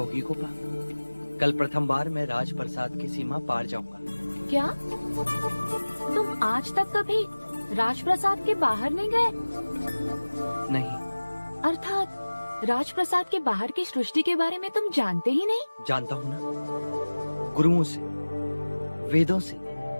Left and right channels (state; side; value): inverted; both; correlation -1.00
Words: गोपा। कल प्रथम बार मैं राजप्रसाद की सीमा पार जाऊंगा। क्या तुम आज तक कभी राजप्रसाद के बाहर नहीं गए? नहीं। अर्थात राजप्रसाद के बाहर की सृष्टि के बारे में तुम जानते ही नहीं? जानता हूँ ना, गुरुओं से, वेदों से,